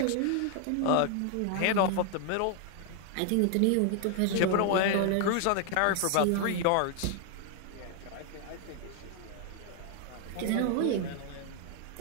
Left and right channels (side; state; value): both; different; correlation 0.00